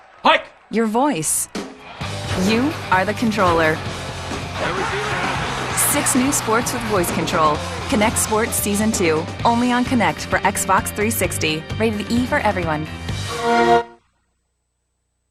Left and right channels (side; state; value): both; identical; correlation 1.00